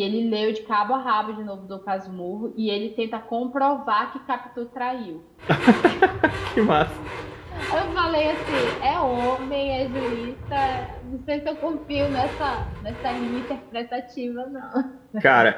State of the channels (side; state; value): both; identical; correlation 1.00